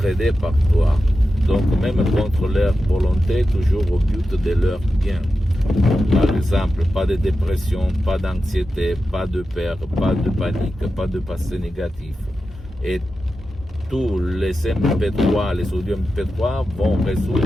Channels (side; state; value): both; normal; correlation 0.91